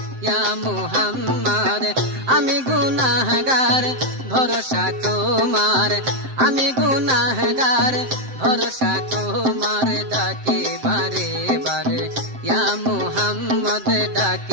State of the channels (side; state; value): left; late; 7.7 ms